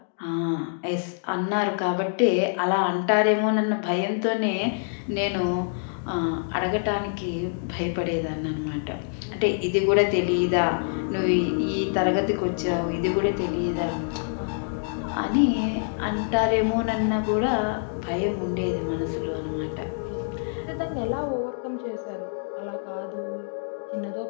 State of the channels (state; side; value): silent; right; digital silence